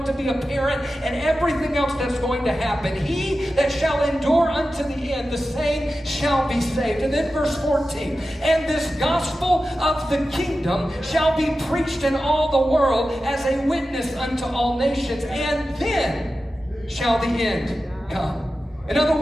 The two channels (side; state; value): both; normal; correlation 0.93